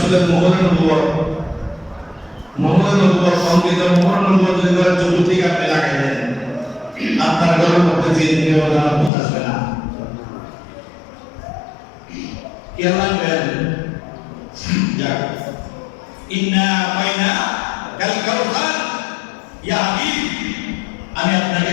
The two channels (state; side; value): drops out; right; at 9.1 s